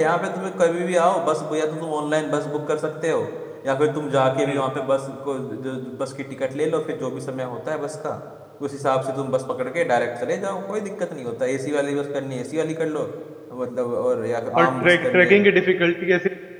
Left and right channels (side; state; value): both; identical; correlation 1.00